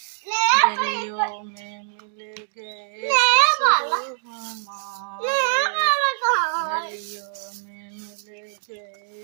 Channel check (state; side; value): silent; left; 63 dB below the other